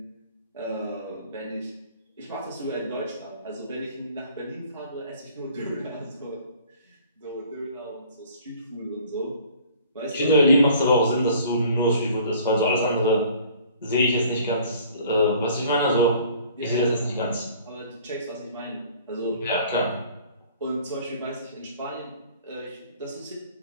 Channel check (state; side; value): inverted; both; correlation -0.52